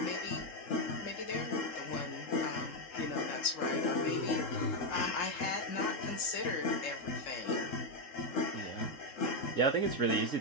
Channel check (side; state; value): right; late; 3.7 ms